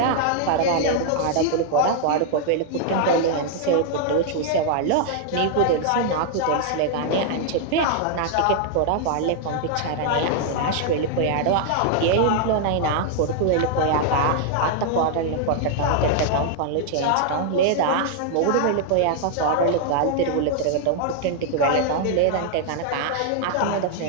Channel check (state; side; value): different; both; correlation -0.01